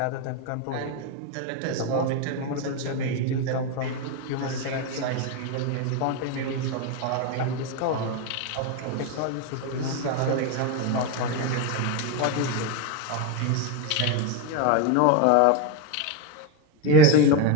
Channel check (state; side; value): different; both; correlation 0.03